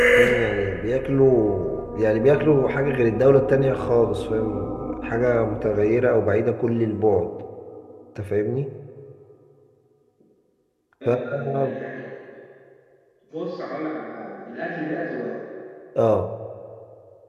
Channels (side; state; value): both; identical; correlation 1.00